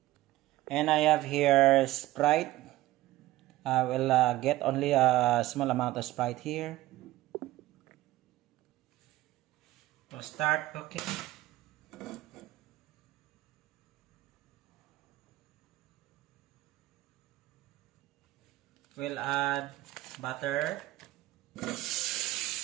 and I have here Sprite. I will get only a small amount of Sprite here to start cooking. We'll add butter.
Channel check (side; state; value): left; quieter; 16.5 dB